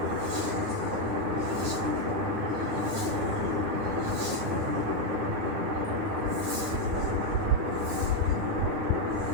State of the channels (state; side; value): late; left; 9.7 ms